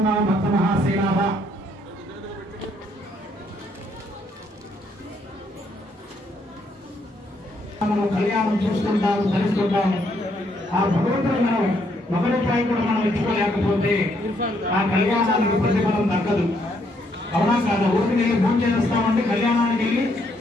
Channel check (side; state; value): both; normal; correlation 0.72